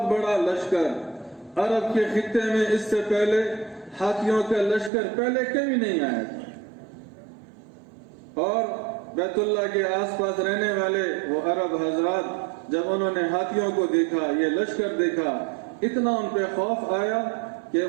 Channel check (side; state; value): left; drops out; at 4.9 s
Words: بڑا لشکر۔ عرب کے خطے میں اس سے پہلے ہاتھیوں کا لشکر پہلے کبھی نہیں آیا تھا، اور بیت اللہ کے آس پاس رہنے والے وہ عرب حضرات جب انہوں نے ہاتھیوں کو دیکھا، یہ لشکر دیکھا، اتنا ان پہ خوف آیا کہ